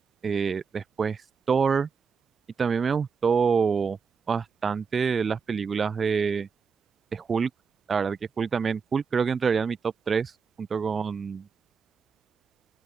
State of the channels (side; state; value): left; quieter; 5.7 dB